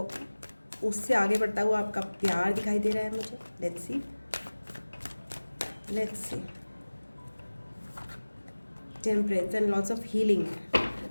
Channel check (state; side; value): inverted; both; correlation -1.00